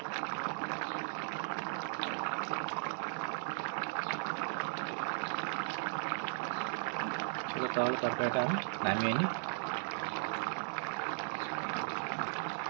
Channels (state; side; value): silent; left; digital silence